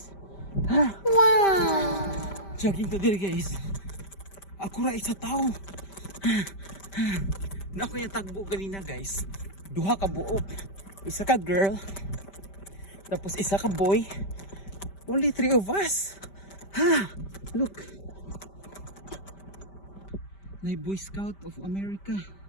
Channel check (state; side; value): late; right; 5.1 ms